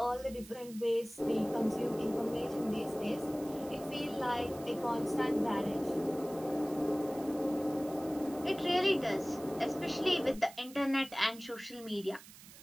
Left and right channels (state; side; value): noise; right; hiss, 18 dB below the sound